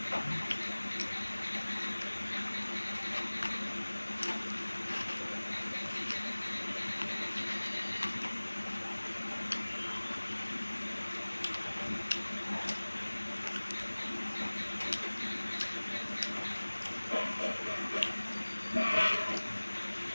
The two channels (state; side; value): inverted; both; correlation -1.00